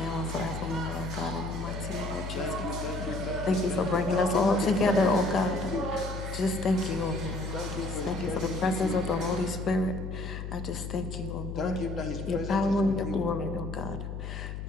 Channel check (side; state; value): left; noise; hum, 6 dB below the sound